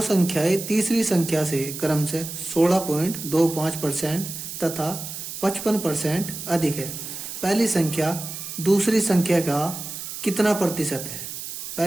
संख्याएं तीसरी संख्या से क्रम से 16.25% तथा 55% अधिक है। पहली संख्या दूसरी संख्या का कितना प्रतिशत है।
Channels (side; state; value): right; noise; hiss, 8 dB below the sound